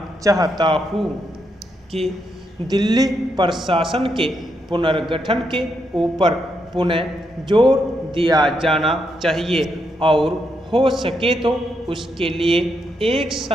चाहता हूँ कि दिल्ली प्रशासन के पुनर्गठन के ऊपर पुनः जोर दिया जाना चाहिए और हो सके तो उसके लिए एक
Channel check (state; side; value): normal; both; correlation 0.80